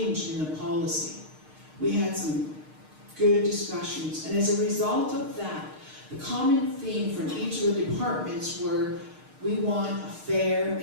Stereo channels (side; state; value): left; late; 6.5 ms